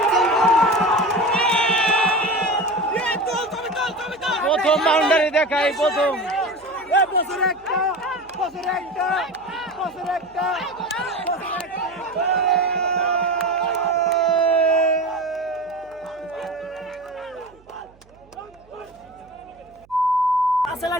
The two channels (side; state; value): right; noise; hum, 29 dB below the sound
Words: প্রথম বাউন্ডারি দেখাই, প্রথম বছর একটা